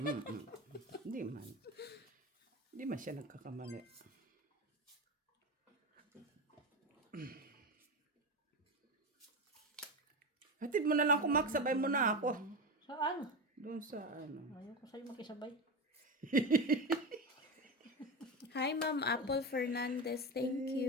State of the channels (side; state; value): both; normal; correlation 0.19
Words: Hindi man. Hindi man siya nagkakamali. Hatid mo na lang ako, Mac. Sabay mo na ako. Saan? Doon sa ano. Ayaw ko sa'yo makisabay. Hi, Ma'am Apple Fernandez. Thank